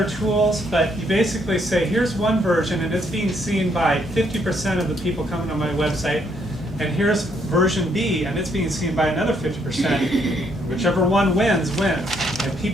tools, but you basically say, here's one version and it's being seen by 50% of the people coming to my website, and here's version B and it's being seen by another 50%. Whichever one wins, wins. And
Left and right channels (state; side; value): normal; both; correlation 0.71